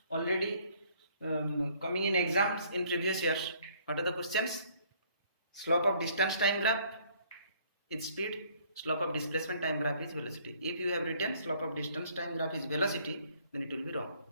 already coming in exams in previous years. What are the questions? Slope of distance time graph is speed, slope of displacement time graph is velocity. If you have written slope of distance time graph is velocity, then it will be wrong.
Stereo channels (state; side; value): inverted; both; correlation -0.61